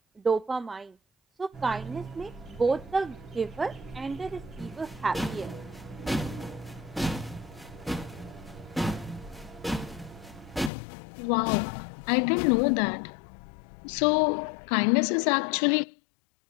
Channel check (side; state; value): right; drops out; at 10.7 s